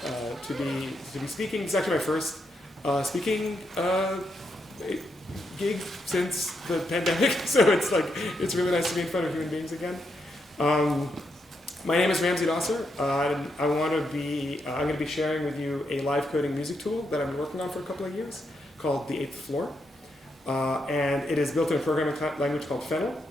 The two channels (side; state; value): both; normal; correlation 0.81